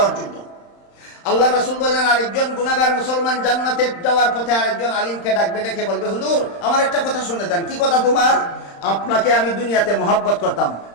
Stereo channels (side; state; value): right; late; 35 ms